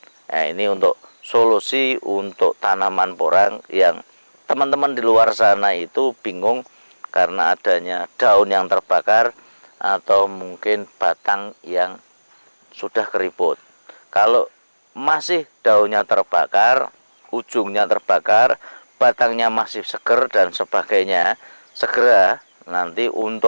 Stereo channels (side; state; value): both; inverted; correlation -1.00